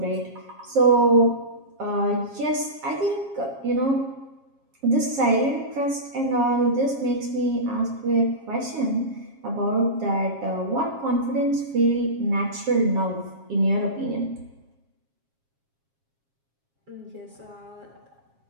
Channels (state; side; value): late; left; 7.4 ms